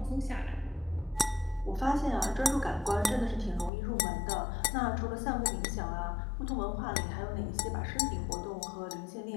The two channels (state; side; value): drops out; right; at 3.7 s